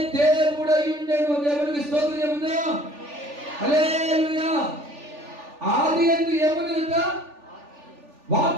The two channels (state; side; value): late; left; 3.4 ms